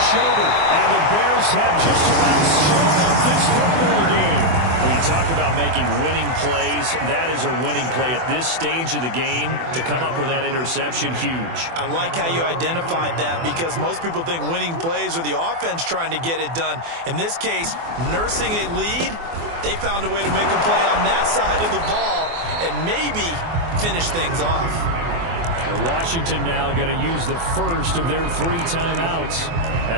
Schobert. And the Bears have just about sewn up this football game. When you talk about making winning plays, that is a winning play at this stage of the game. To come up with that interception, huge. I like how you identified that because most people think winning plays are the offense trying to get it done. In this case, nursing a lead, they found a way to make a play on that side of the ball and maybe finish things off. And Washington now going to use the first of their 3 timeouts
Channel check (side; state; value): left; late; 24 ms